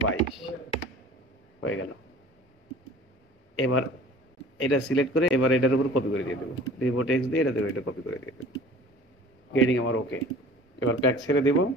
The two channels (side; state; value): both; normal; correlation 0.45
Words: হয়ে গেল। এবার এটা সিলেক্ট করে এবার এটার উপর কপি করে দিয়ে দেবো, রিপোর্ট এক্স দিয়ে এটা দেবো, এটা কপি করে দিয়ে দেবো। গ্রেডিং আমার ওকে। এবার প্যাক ছেড়ে দেবো,